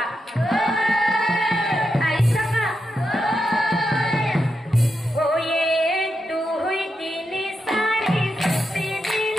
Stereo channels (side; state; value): both; normal; correlation 0.85